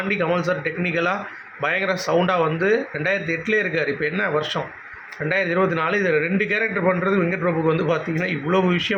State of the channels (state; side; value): identical; both; correlation 1.00